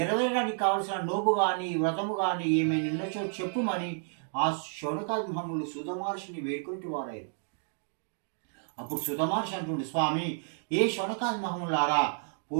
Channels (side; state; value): left; silent; 57 dB below the other